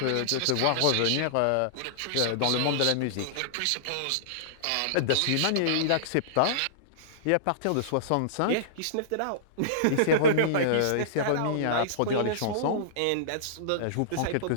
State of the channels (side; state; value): both; different; correlation -0.02